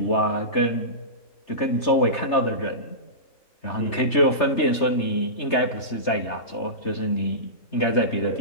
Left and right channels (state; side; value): late; right; 3.3 ms